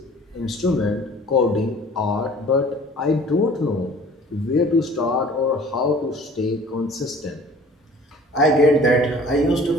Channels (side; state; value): both; normal; correlation 0.49